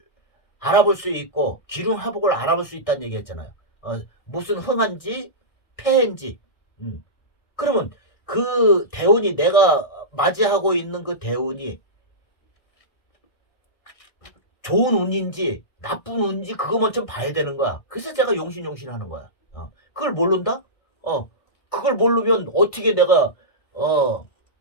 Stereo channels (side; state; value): right; late; 1.6 ms